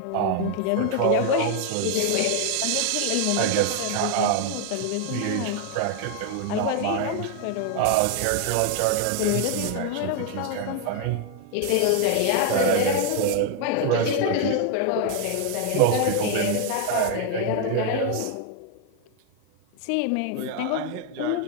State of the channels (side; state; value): both; different; correlation 0.00